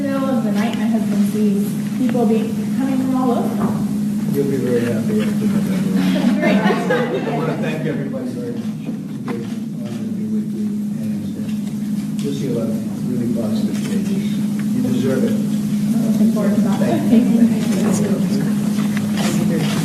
middle of the night, my husband sees people coming from all over. You'll be very happy after November. Great. I want to thank everybody very much. It's a great honor to be with you, and you'll see a lot of really positive changes. You deserve it. Looking forward to that. Thank you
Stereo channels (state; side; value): identical; both; correlation 1.00